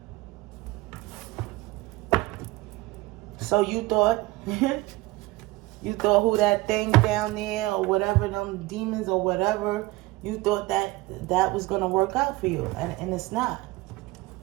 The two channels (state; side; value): quieter; left; 20.1 dB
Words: So you thought who that thing down there or whatever, them demons or whatever, you thought that was going to work out for you. And it's not.